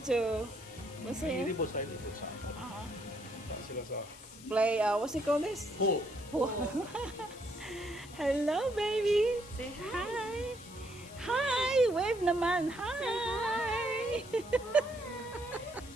to. What's Hindi it? po sa dito sa sila sa Play. What's it called? This. pool. Hello, baby. Say hi. Hi. Wave naman. Hi.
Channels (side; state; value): left; noise; hiss, 19 dB below the sound